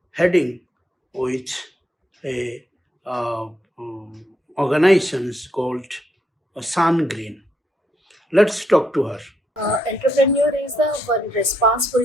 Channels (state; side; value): normal; both; correlation 0.76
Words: heading with a organizations called Sun Green. Let's talk to her. Entrepreneur is the one